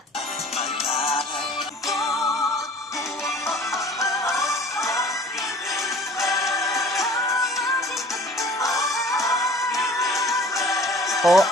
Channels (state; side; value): normal; both; correlation 0.48